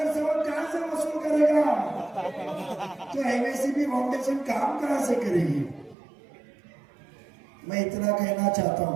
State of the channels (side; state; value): left; drops out; at 6.0 s